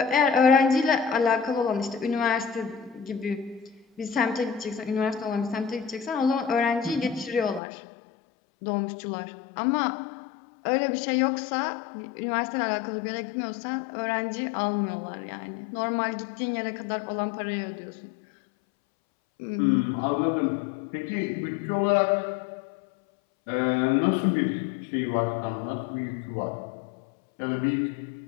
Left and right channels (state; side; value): drops out; right; at 7.6 s